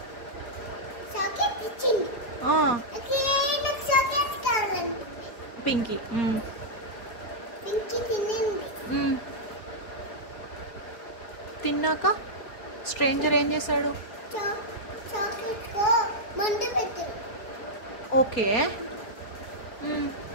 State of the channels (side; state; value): right; late; 4.6 ms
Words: చాక్లెట్ ఇచ్చింది. నాకు చాక్లెట్ కావాలండి. పింకీ పింకీ తినింది. తిన్నాక స్ట్రేంజర్ ఏం చేశాడు? చాక్లెట్ కో మందు పెట్టాడు. ఓకే.